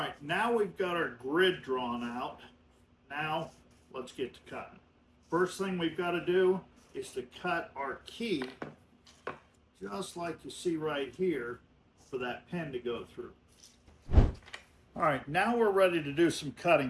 now we've got our grid drawn out. Now let's get to cutting. First thing we've got to do is to cut our key, just like you see right here, for that pin to go through. All right, now we're ready to do some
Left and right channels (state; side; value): identical; both; correlation 1.00